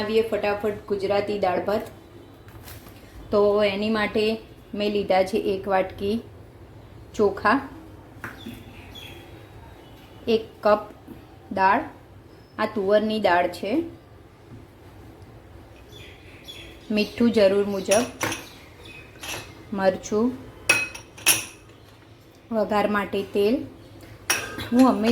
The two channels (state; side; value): identical; both; correlation 1.00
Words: ફટાફટ ગુજરાતી દાળ ભાત. તો એની માટે મેં લીધા છે 1 વાટકી ચોખા, 1 કપ દાળ, આ તુવરની દાળ છે, મીઠું જરૂર મુજબ, મરચું, વઘાર માટે તેલ, હું